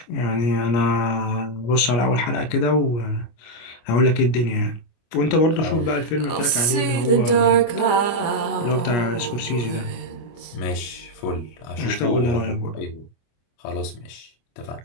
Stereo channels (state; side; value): late; right; 25 ms